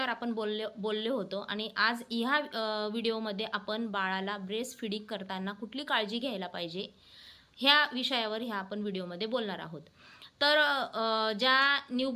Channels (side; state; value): both; identical; correlation 1.00